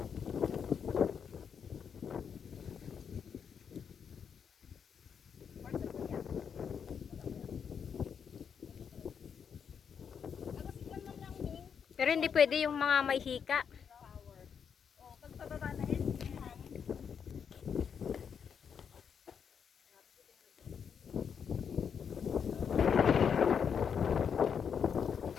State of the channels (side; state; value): right; quieter; 7.2 dB